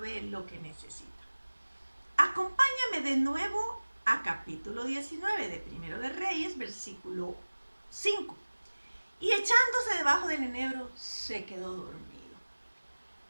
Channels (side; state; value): both; inverted; correlation -1.00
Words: lo que necesita. Acompáñame de nuevo a capítulo 19 de Primero de Reyes, versículo 5. Y echándose debajo del enebro, se quedó dormido.